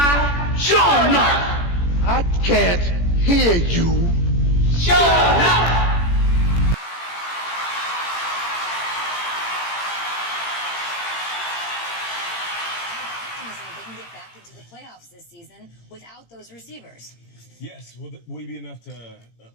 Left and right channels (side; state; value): right; late; 17 ms